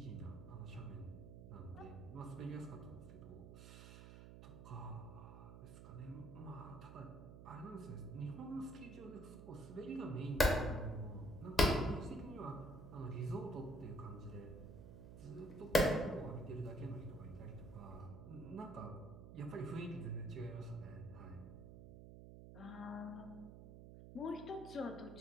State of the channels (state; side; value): noise; right; hum, 12 dB below the sound